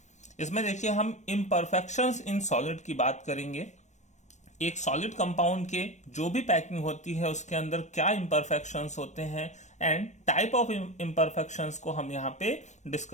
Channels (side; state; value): right; late; 0.34 ms